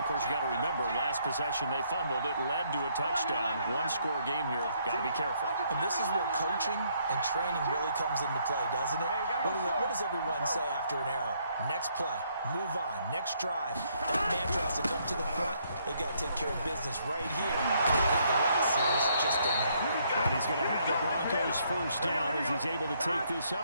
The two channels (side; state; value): both; inverted; correlation -0.70